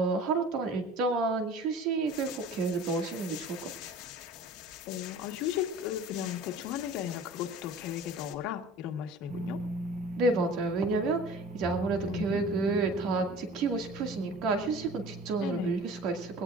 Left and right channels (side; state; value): both; normal; correlation 0.42